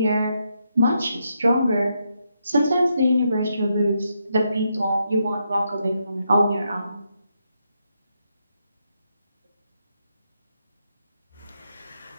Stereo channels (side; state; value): both; inverted; correlation -0.81